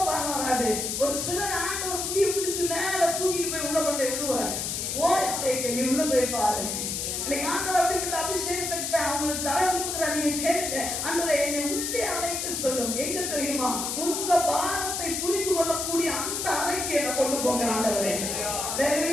வாரம் வராது. ஒரு சிலர் ஆண்டவர் முடிய பிடிச்சு மேல தூக்கிட்டு போய் உள்ள கொண்டு விடுவார். நீ உள்ள போய் பாரு. இன்னைக்கு ஆண்டவர் அப்படிப்பட்ட அபிஷேகத்தை அவங்களுக்கு தர விரும்புகிறார். நீங்க கேளுங்க, ஆண்டவரே என்னை உள்ளே அழைத்து சொல்லும். எங்க தெரியுமா? உங்க பாரத்தை புரிந்து கொள்ளக்கூடிய அந்த அறைக்கு என்ன கொண்டு போங்க ஆண்டவரே.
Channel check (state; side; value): noise; left; hiss, 2 dB below the sound